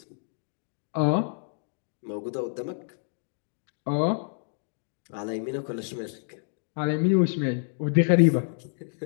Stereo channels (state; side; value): silent; right; digital silence